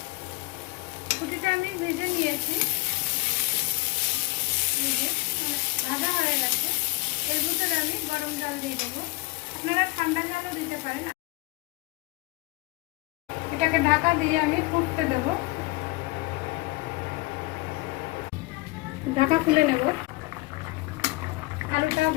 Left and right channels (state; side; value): quieter; right; 22.6 dB